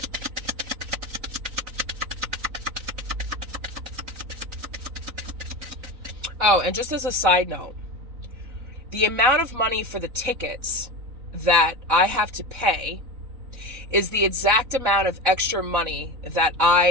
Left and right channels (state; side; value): late; left; 3.9 ms